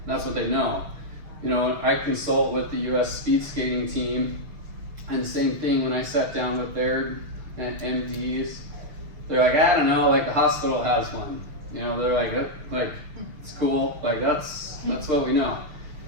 That's what they know. You know, I consult with the US speed skating team, and same thing when I sat down with their MDs, they're like, I don't know, like the hospital has one. You know, they're like it's cool, like that's what we know.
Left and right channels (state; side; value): late; left; 6.6 ms